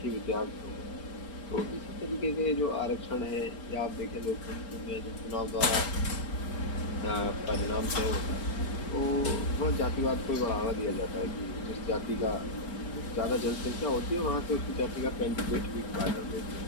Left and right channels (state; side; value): late; right; 4.4 ms